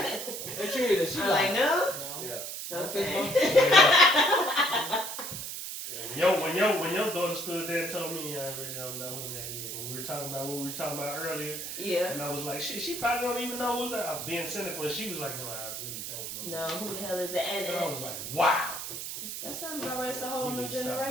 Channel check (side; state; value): right; noise; hiss, 6 dB below the sound